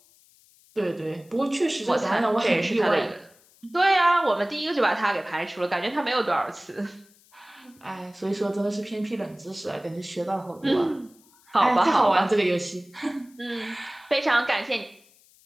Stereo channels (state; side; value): noise; left; hiss, 29 dB below the sound